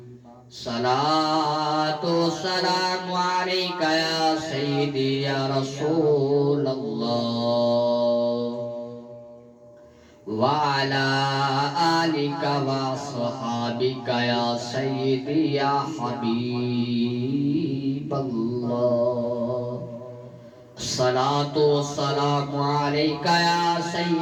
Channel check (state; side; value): identical; both; correlation 1.00